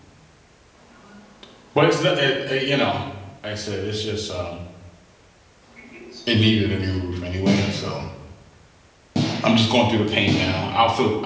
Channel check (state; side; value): identical; both; correlation 1.00